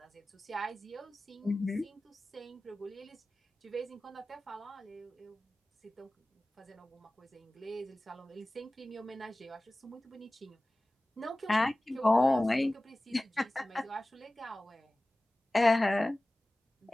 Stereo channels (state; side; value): normal; both; correlation 0.97